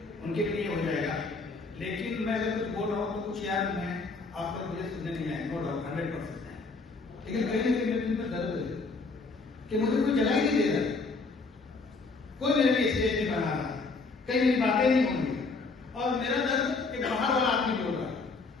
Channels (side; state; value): right; quieter; 4.0 dB